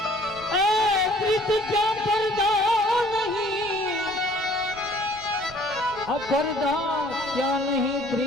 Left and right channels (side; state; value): right; noise; rumble, 20 dB below the sound